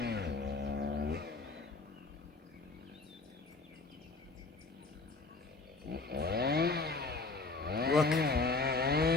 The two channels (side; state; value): right; quieter; 3.7 dB